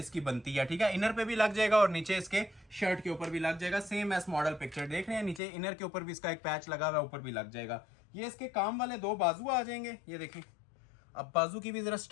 बनती है, ठीक है। इनर पे भी लग जाएगा और नीचे इसके शर्ट के ऊपर भी लग जाएगा। सेम एस मॉडल पिक्चर देख रहे हैं, नीचे इनर के ऊपर भी इसका एक पैच लगा हुआ है, ऊपर भी लग जाएगा। ये इसके काम वाले 2 बाजू आ जाएंगे। ये देखें, अब बाजू की भी जरा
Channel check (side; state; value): right; drops out; at 5.4 s